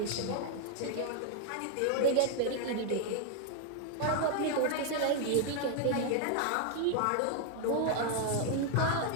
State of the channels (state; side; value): different; both; correlation 0.00